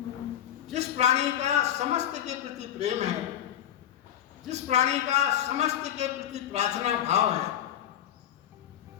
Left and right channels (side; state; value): right; quieter; 10.9 dB